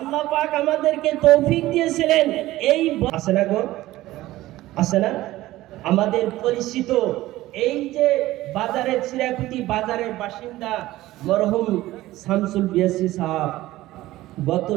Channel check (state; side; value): quieter; left; 16.5 dB